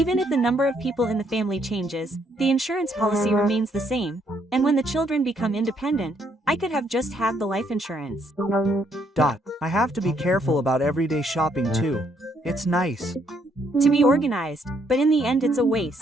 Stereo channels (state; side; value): normal; both; correlation 0.71